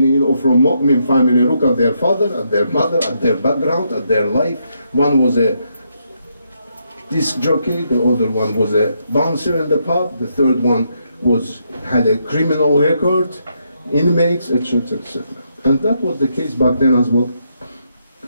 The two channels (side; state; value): both; inverted; correlation -0.78